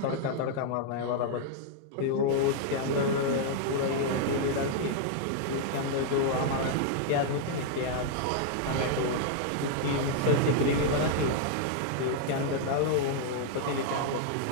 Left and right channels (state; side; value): different; both; correlation -0.01